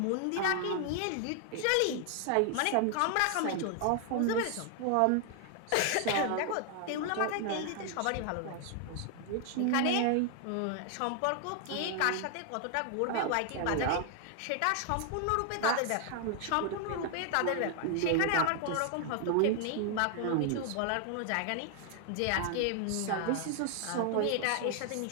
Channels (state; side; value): different; both; correlation 0.00